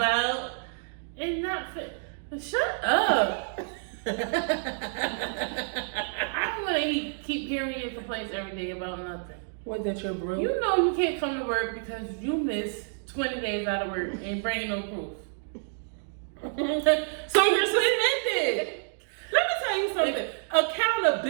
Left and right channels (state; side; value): silent; left; digital silence